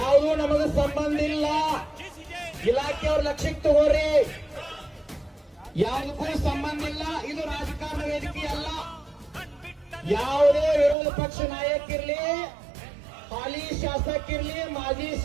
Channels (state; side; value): drops out; left; at 11.0 s